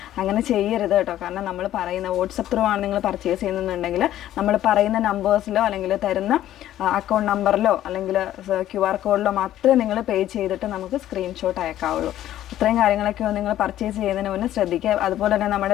അങ്ങനെ ചെയ്യരുത് കേട്ടോ. കാരണം നമ്മൾ പറയുന്ന വാട്സപ്പ് ത്രൂ ആണ് നിങ്ങൾ പർച്ചേസ് ചെയ്യുന്നുണ്ടെങ്കിൽ നമ്മൾ പറയുന്ന നമ്പേഴ്സിലോ അല്ലെങ്കിൽ തരുന്ന അക്കൗണ്ട് നമ്പറിലോ അല്ലെങ്കിൽ QR കോഡിലോ മാത്രമേ നിങ്ങൾ പേ ചെയ്തിട്ട് നമുക്ക് സ്ക്രീൻഷോട്ട് അയക്കാവുള്ളൂ. ഇത്രയും കാര്യങ്ങളൊക്കെ നിങ്ങൾ പർച്ചേസ് ചെയ്യുന്നതിന് മുന്നേ ശ്രദ്ധിക്കുക. അതുപോലെ തന്നെ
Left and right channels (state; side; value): quieter; right; 12.7 dB